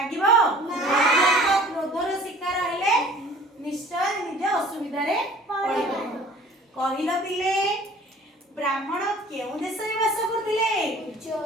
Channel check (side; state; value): both; normal; correlation 0.49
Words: क्रोधर शिकार हेले निश्चय निज असुविधा रे पड़िबो। कहिलो पिले ब्राह्मण केउ देश रे वास करथिले